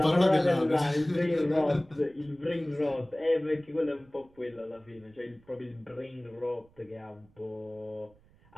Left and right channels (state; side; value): noise; right; rumble, 30 dB below the sound